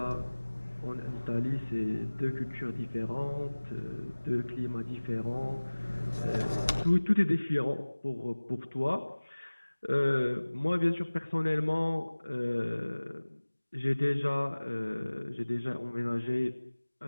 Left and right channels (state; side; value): inverted; both; correlation -1.00